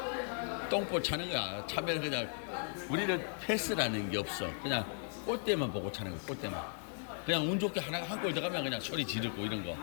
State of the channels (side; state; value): right; silent; 53 dB below the other